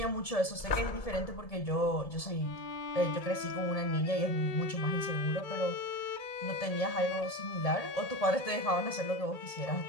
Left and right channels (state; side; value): late; right; 1.7 ms